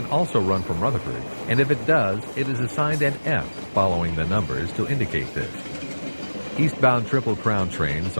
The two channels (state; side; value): inverted; both; correlation -1.00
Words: also run from Rutherford, and if it does, it is assigned an F following the numbers to indicate this. Eastbound Triple Crown trains